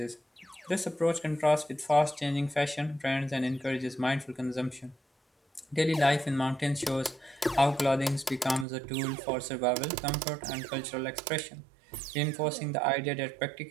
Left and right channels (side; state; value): left; drops out; at 8.7 s